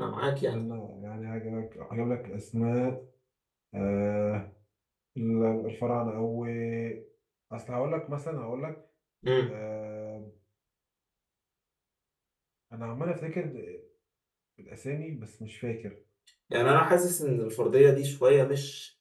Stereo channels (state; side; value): identical; both; correlation 1.00